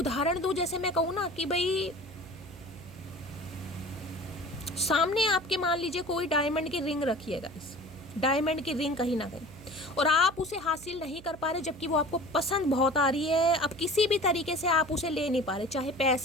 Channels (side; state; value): right; noise; hum, 18 dB below the sound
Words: दूं, जैसे मैं कहूँ ना कि भाई सामने आपके मान लीजिए कोई डायमंड की रिंग रखी है गाइस, डायमंड की रिंग कहीं ना कहीं, और आप उसे हासिल नहीं कर पा रहे, जबकि वो आपको पसंद बहुत आ रही है। अब किसी भी तरीके से आप उसे ले नहीं पा रहे, चाहे